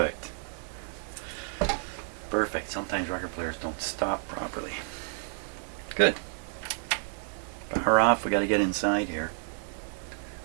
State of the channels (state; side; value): silent; left; 58 dB below the other